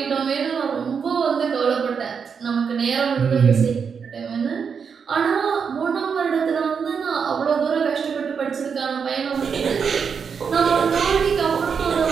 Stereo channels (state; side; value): quieter; left; 6.3 dB